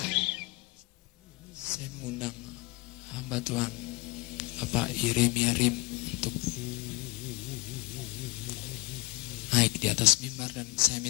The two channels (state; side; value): quieter; right; 23.0 dB